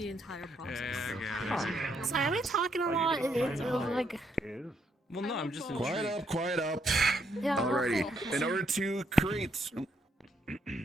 entire process. Sorry, am I talking a lot? It's like. Well, no, I'm just Quiet up. Yeah. Alrighty. In order to create.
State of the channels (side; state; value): both; normal; correlation 0.75